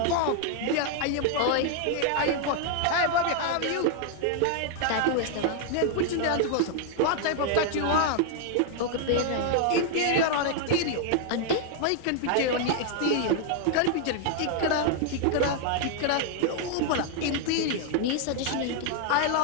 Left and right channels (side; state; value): both; different; correlation 0.00